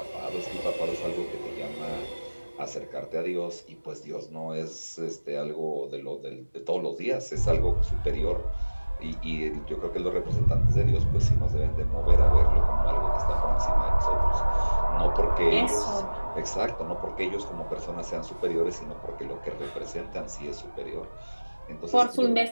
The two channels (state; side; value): inverted; both; correlation -1.00